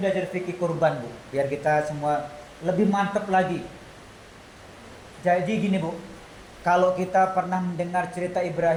fikih kurban bu, biar kita semua lebih mantap lagi. Jadi gini bu, kalau kita pernah mendengar cerita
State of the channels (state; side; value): identical; both; correlation 1.00